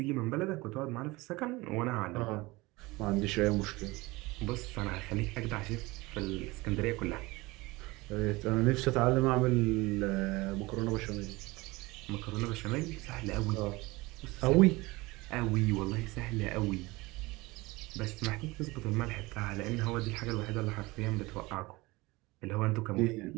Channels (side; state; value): left; quieter; 22.1 dB